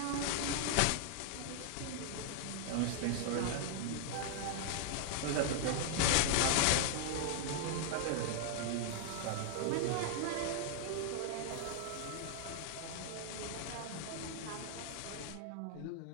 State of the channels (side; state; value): both; different; correlation -0.01